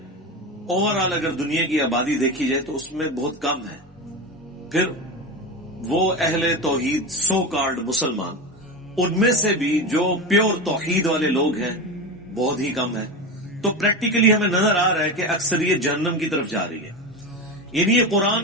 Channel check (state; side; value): normal; both; correlation 0.22